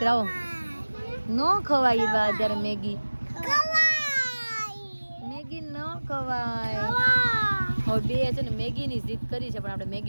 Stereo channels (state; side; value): inverted; both; correlation -1.00